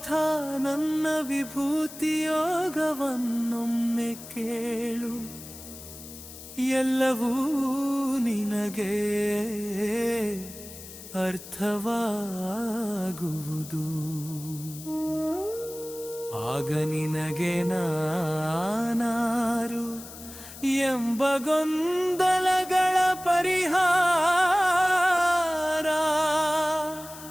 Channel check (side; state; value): left; noise; hiss, 15 dB below the sound